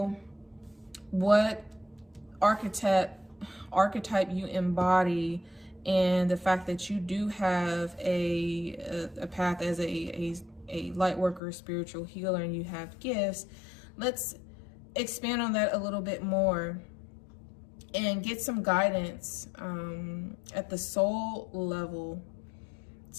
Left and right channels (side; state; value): right; drops out; at 11.4 s